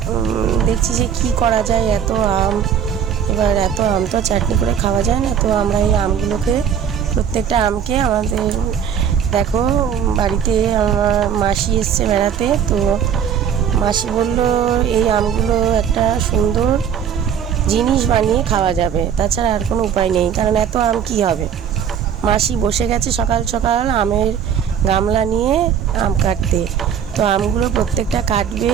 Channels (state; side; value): quieter; left; 8.2 dB